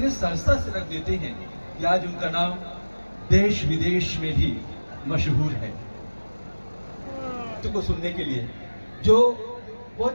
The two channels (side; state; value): both; inverted; correlation -1.00